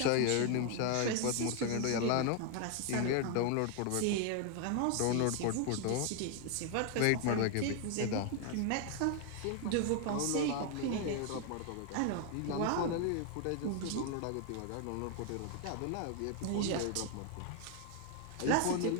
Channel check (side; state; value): both; different; correlation 0.00